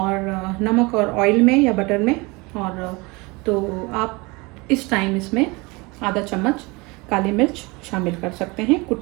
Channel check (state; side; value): quieter; left; 25.6 dB